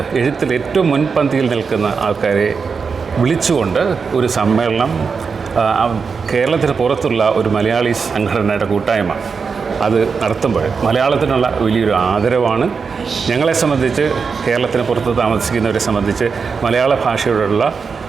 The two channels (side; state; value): left; quieter; 5.4 dB